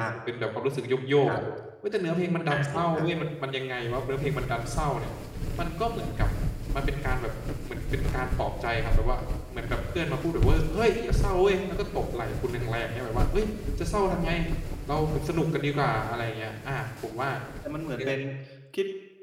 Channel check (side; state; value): both; identical; correlation 1.00